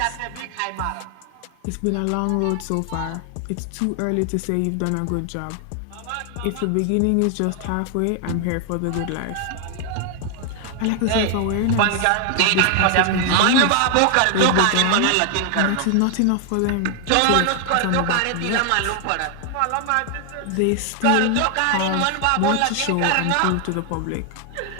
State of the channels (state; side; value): different; both; correlation 0.00